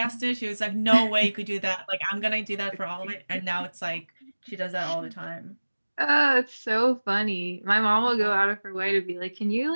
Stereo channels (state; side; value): inverted; both; correlation -1.00